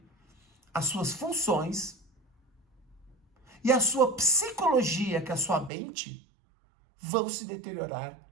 as suas funções e a sua psicologia, que é a sua mente, vão se deteriorar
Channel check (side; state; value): left; drops out; at 5.7 s